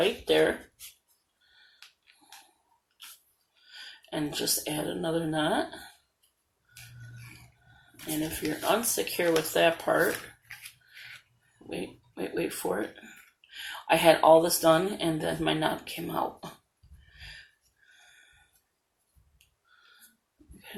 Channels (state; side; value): identical; both; correlation 1.00